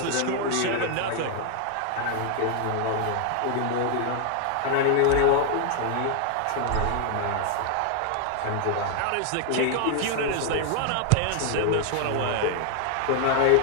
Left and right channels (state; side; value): different; both; correlation 0.00